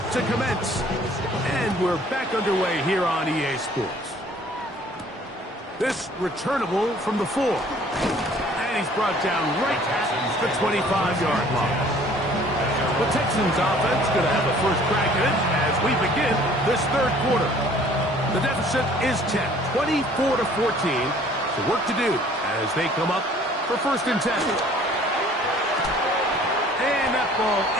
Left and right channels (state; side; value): normal; both; correlation 0.54